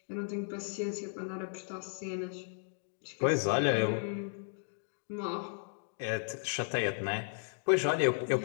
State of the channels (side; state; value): right; silent; digital silence